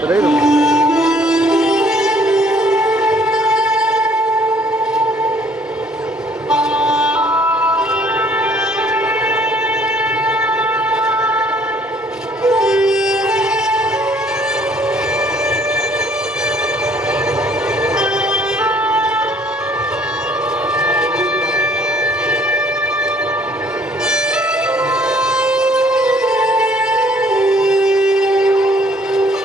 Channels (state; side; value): normal; both; correlation 0.60